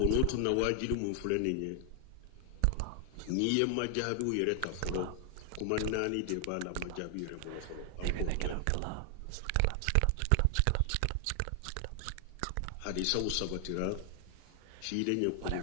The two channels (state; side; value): different; both; correlation 0.00